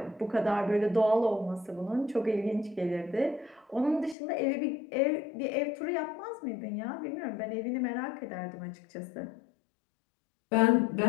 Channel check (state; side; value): drops out; right; at 4.2 s